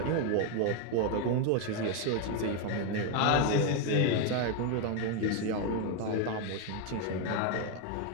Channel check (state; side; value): different; both; correlation 0.01